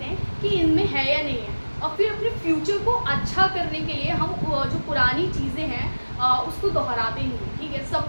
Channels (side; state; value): both; inverted; correlation -1.00